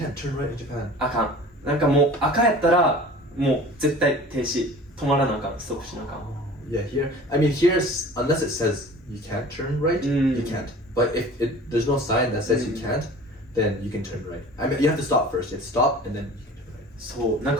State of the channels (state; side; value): normal; both; correlation 0.43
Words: turn right in Japan. あかん。なんかもう赤やったら、もう絶対停止。止まらなあかん。ストップしなあかん。Yeah, here. I mean, here's unless it says you can't turn right, you can't. But if there's no sign that says you can't, then you can turn right. I mean, you have to stop first. You have to stop and then you can turn right. そう。なん